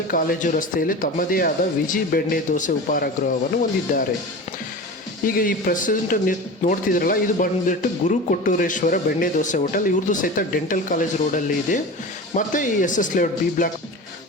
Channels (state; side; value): normal; both; correlation 0.31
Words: ಕಾಲೇಜು ರಸ್ತೆಯಲ್ಲಿ ತಮ್ಮದೇ ಆದ ವಿಜಿ ಬೆಣ್ಣೆ ದೋಸೆ ಉಪಹಾರ ಗೃಹವನ್ನು ಹೊಂದಿದ್ದಾರೆ. ಈಗ ಈ ಪ್ರೆಸೆಂಟ್ ನೋಡ್ತಿದ್ರಲ್ಲ, ಇದು ಬಂದ್ಬಿಟ್ಟು ಗುರು ಕೊಟ್ಟೂರೇಶ್ವರ ಬೆಣ್ಣೆ ದೋಸೆ ಹೋಟೆಲ್. ಇವ್ರದ್ದು ಸಹಿತ ಡೆಂಟಲ್ ಕಾಲೇಜ್ ರೋಡಲ್ಲಿ ಇದೆ. ಮತ್ತು ಈ SS ಲೇಔಟ್